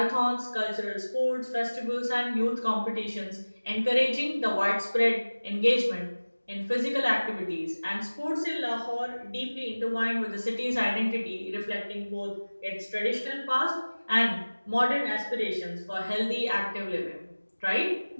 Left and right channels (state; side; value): inverted; both; correlation -1.00